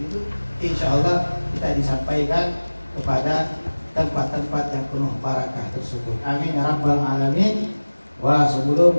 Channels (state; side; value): inverted; both; correlation -1.00